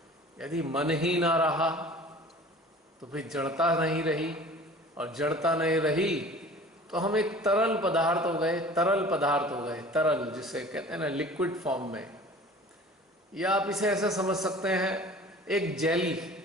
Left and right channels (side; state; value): both; normal; correlation 0.44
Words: यदि मन ही ना रहा तो फिर जड़ता नहीं रही, और जड़ता नहीं रही तो हम एक तरल पदार्थ हो गए, तरल जिसे कहते हैं ना, लिक्विड फॉर्म में। या आप इसे ऐसा समझ सकते हैं, एक